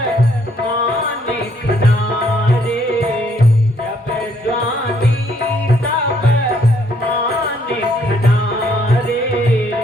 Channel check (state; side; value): normal; both; correlation 0.68